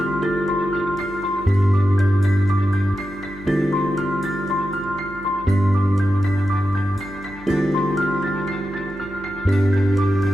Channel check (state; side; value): noise; left; hum, 20 dB below the sound